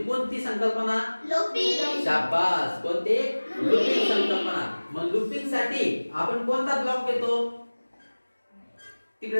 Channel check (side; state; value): both; inverted; correlation -1.00